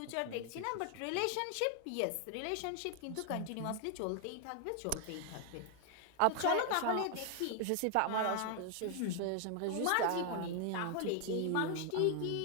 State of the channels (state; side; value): different; both; correlation 0.00